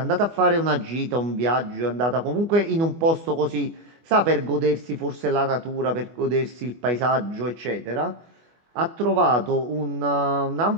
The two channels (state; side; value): late; left; 24 ms